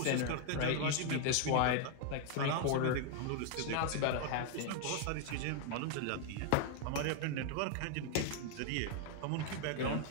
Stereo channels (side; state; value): both; different; correlation 0.00